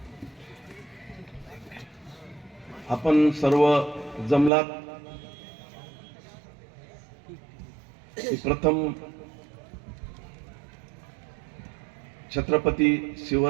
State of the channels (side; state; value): left; drops out; at 4.5 s